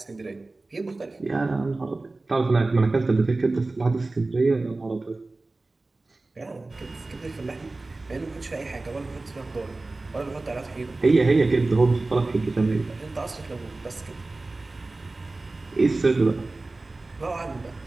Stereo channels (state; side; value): quieter; left; 3.2 dB